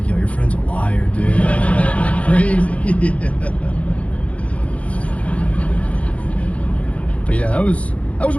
like, yo, your friend's a liar, dude. Crazy. But yeah, that was a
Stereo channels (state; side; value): late; right; 0.065 ms